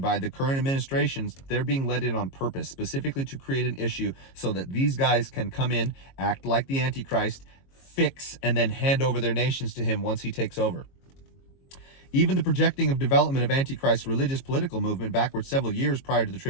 the current administrations, they're being let in on purpose, specifically to create an issue so that these guys can come in, act like the Antichrist, fix, and then hand over their nations to him once he takes over. Even the projecting of development of Antichrist's religious political movement backwards several years prior to the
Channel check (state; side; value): late; right; 22 ms